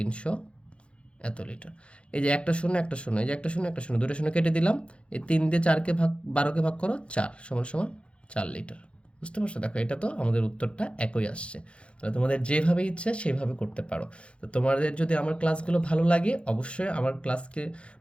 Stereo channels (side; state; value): right; late; 0.059 ms